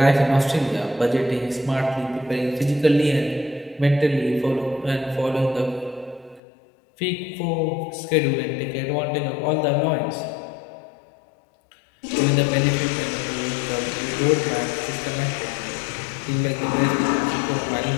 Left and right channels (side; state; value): right; drops out; at 6.4 s